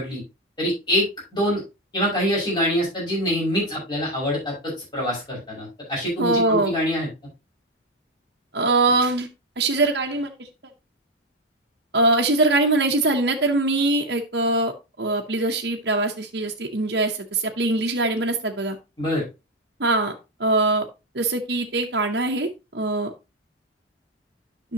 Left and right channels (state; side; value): normal; both; correlation 0.05